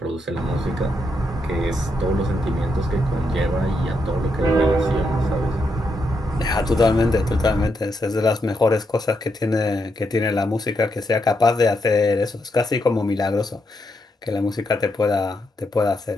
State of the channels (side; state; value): both; normal; correlation 0.81